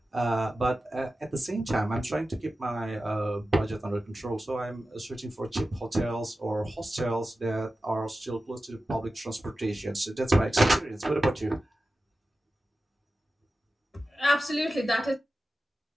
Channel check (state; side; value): normal; both; correlation 0.94